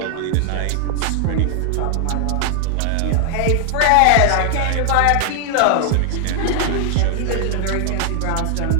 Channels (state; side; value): different; both; correlation 0.00